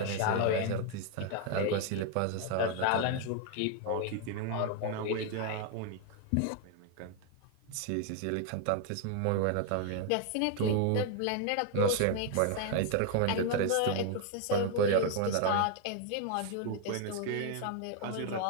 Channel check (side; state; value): both; different; correlation 0.00